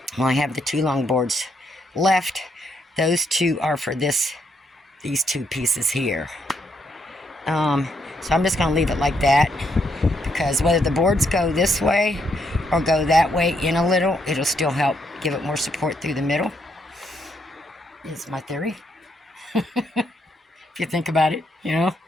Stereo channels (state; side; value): normal; both; correlation 0.76